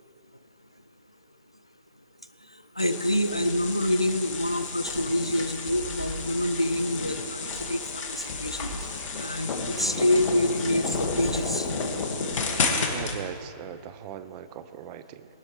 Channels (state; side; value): inverted; both; correlation -0.67